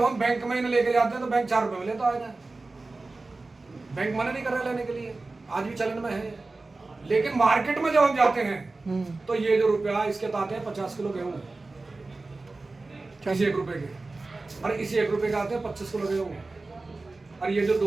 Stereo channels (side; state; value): left; quieter; 3.4 dB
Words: हम बैंक में इन्हें लेके जाते हैं तो बैंक 4 रुपए में लेता है। बैंक मना नहीं कर रहा लेने के लिए, आज भी चलन में है। लेकिन मार्केट में जब हम जाते हैं तो ये जो रुपया इसके आते हैं 50 किलो गेहूं, इसी 1 रुपए के, और इसी 1 रुपए के आते हैं 25 किलो गेहूं, और ये जो